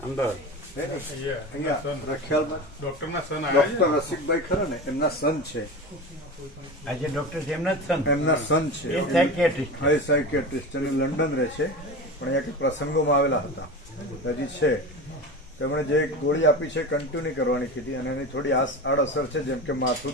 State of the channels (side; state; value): both; normal; correlation 0.28